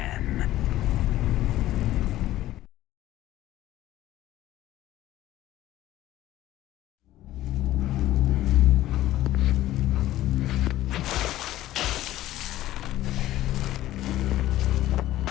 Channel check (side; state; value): right; quieter; 14.7 dB